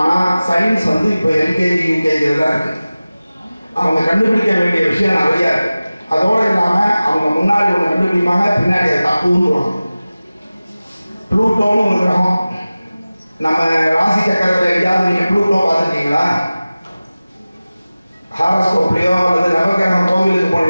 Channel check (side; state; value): both; inverted; correlation -0.97